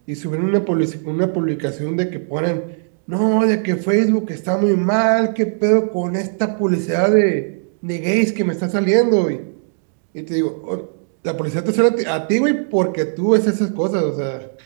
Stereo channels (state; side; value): silent; left; digital silence